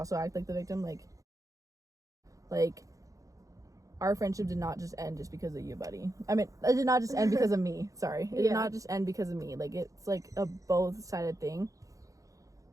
act like the victim, like our friendship did not just end just because of you, buddy. I mean, it did not just end because of me. Sorry. It did not just end because of me. Like, it's, like, a both-sided thing.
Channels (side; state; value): left; late; 0.16 ms